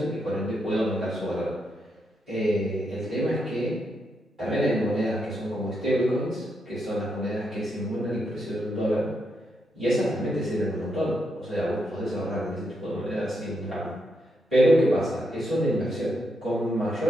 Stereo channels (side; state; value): both; normal; correlation 0.80